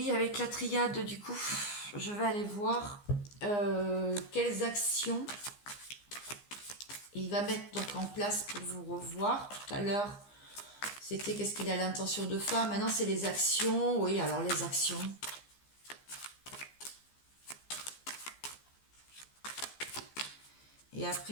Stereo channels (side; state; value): right; late; 15 ms